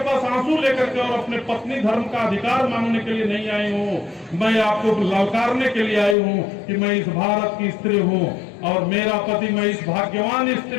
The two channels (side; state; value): right; drops out; at 6.2 s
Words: पास आंसू लेकर के और अपने पत्नी धर्म का अधिकार मांगने के लिए नहीं आई हूं। मैं आपको ललकारने के लिए आई हूं कि मैं इस भारत की स्त्री हूं और मेरा पति, मैं इस भाग्यवान